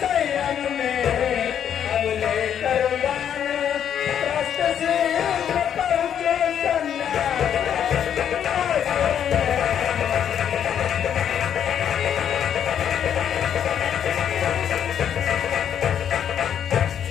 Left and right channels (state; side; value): quieter; right; 9.1 dB